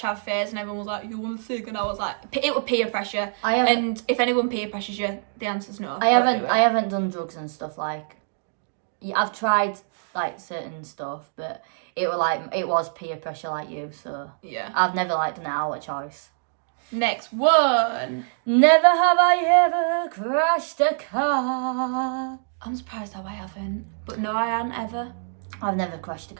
phase and everyone was like, you want a cig? And I was like, it was peer pressure. And if anyone peer pressures you, the answer's no. I haven't done drugs and stuff like... I've tried like certain stuff, but it was peer pressure like you, so... Yeah. I've never like done it out of choice. Next one. Never have I ever crashed a car. I'm surprised how I haven't. But no, I haven't ever. I've never crashed a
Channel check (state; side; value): silent; left; digital silence